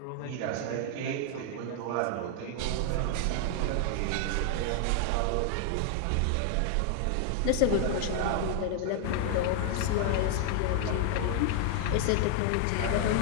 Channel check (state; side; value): different; both; correlation 0.00